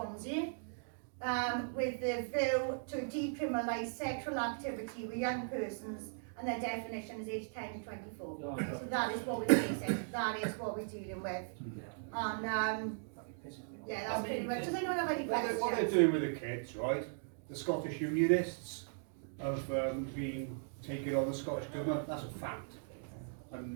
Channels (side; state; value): left; silent; digital silence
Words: with the view to decriminalise sexual activity with young persons, and their definition is age 10 to 24. So that is what we're facing, that is what we're dealing with. And yeah, that's pretty much. Does anyone have any questions? What they're doing with the kids, right? The Scottish Unionists have been taking on the Scottish Government, that's a fact.